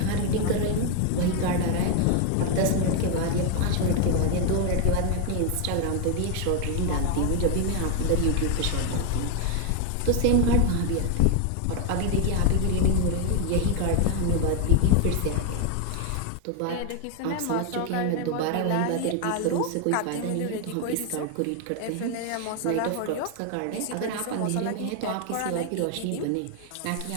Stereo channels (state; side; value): different; both; correlation 0.01